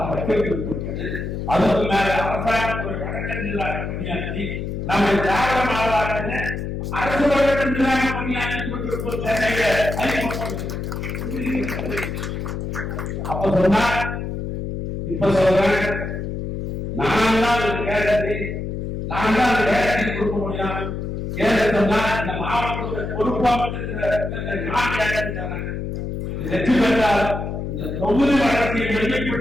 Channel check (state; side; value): noise; left; hum, 4 dB below the sound